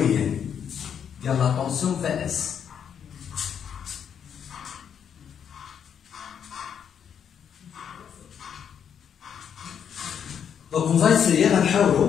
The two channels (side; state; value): right; quieter; 8.1 dB